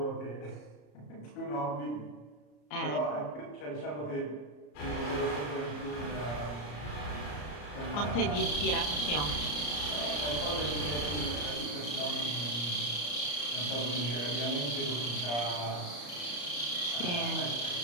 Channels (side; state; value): right; late; 34 ms